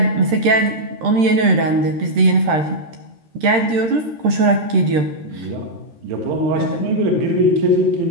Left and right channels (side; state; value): left; late; 13 ms